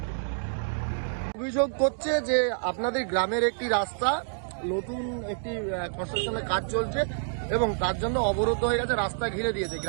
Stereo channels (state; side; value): silent; left; digital silence